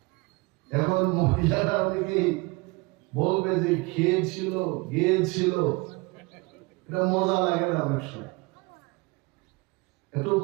এখন মহিলারা অনেকেই বলবে যে খেয়েছিল গিয়েছিল, এটা মজা লাগে না। অনেক সময় একটু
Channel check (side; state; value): left; quieter; 25.8 dB